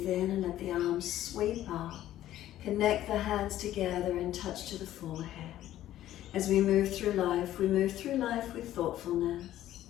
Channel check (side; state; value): right; quieter; 13.2 dB